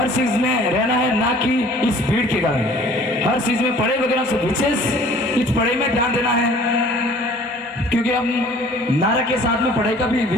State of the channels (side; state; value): both; normal; correlation 0.52